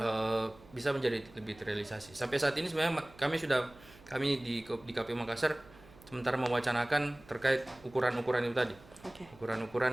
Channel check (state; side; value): noise; right; hum, 23 dB below the sound